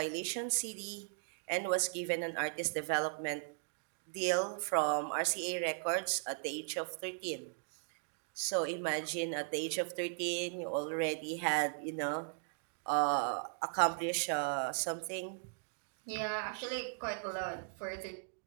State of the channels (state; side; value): silent; left; digital silence